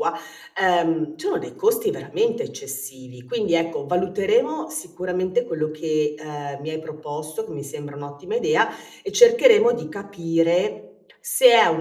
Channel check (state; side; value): identical; both; correlation 1.00